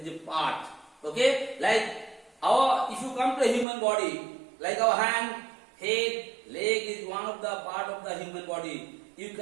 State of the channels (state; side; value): drops out; left; at 3.7 s